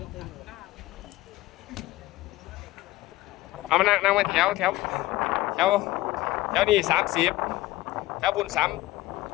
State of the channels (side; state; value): right; quieter; 17.4 dB